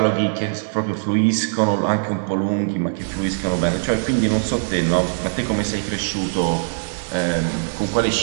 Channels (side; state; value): left; silent; digital silence